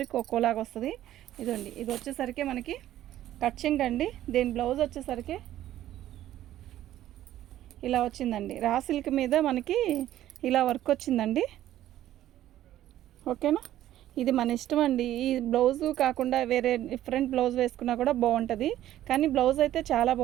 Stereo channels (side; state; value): left; quieter; 13.0 dB